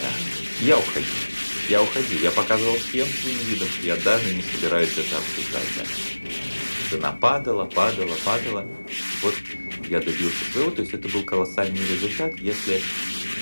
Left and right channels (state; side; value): inverted; both; correlation -1.00